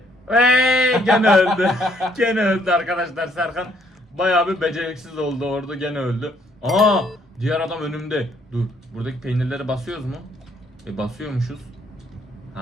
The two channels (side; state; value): both; normal; correlation 0.67